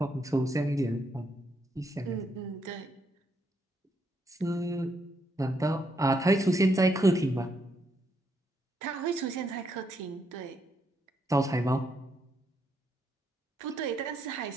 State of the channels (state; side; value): normal; both; correlation 0.77